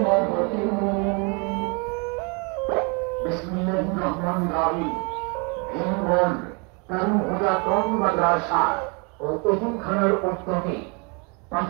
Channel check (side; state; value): left; quieter; 32.8 dB